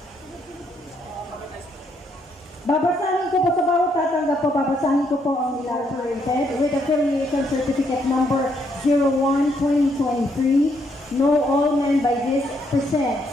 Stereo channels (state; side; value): normal; both; correlation 0.73